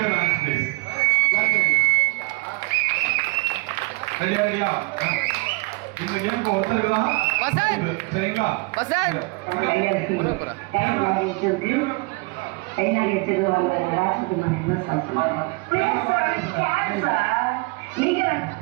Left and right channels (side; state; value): left; quieter; 27.2 dB